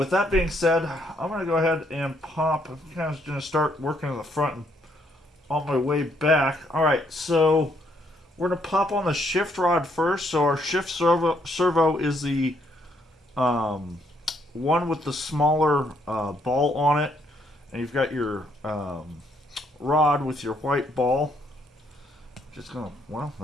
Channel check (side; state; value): both; normal; correlation 0.71